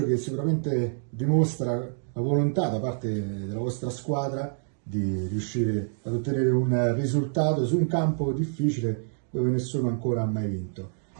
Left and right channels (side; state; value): left; silent; 60 dB below the other